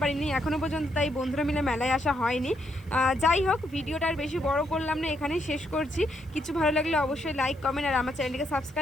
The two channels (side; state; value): right; noise; hiss, 30 dB below the sound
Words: পারিনি এখনও পর্যন্ত, তাই বন্ধুরা মিলে মেলায় আসা হয়নি। যাই হোক, ভিডিওটা আর বেশি বড় করলাম না, এখানেই শেষ করছি। কিছু ভালো লাগলে অবশ্যই লাইক কমেন্ট আর আমার চ্যানেলটিকে